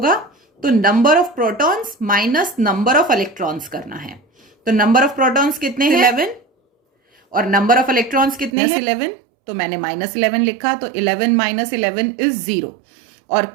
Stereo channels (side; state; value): left; drops out; at 8.5 s